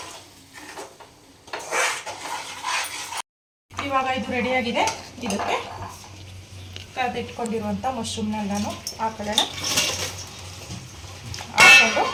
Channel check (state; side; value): identical; both; correlation 1.00